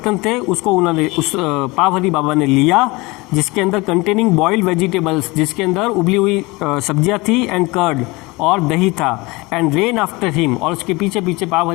थे, उसको उन्होंने, उस पावहरी बाबा ने लिया, जिसके अंदर कंटेनिंग बॉइल्ड वेजिटेबल्स, जिसके अंदर उबली हुई सब्जियां थी, एंड कर्ड, और दही था। एंड रेन आफ्टर हिम, और उसके पीछे पीछे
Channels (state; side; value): quieter; right; 23.8 dB